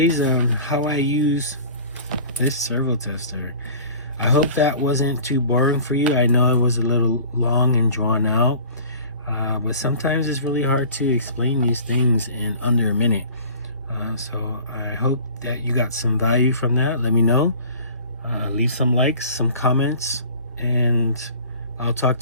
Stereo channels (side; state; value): both; inverted; correlation -0.44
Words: on how I use this servo tester. I hope that wasn't too boring for you. I know it was a little long and drawn out, but sometimes it's really hard to explain these things in under a minute. So I hope that you got some value from that. Let me know. Leave some likes, some comments, and I'll talk